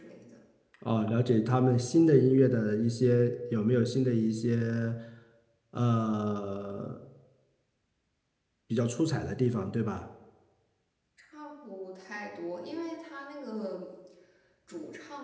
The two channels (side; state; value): both; identical; correlation 1.00